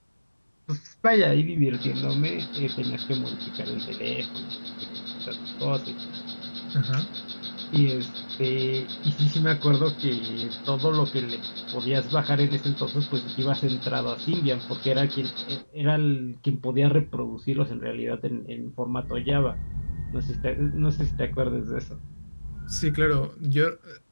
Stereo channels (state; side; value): inverted; both; correlation -1.00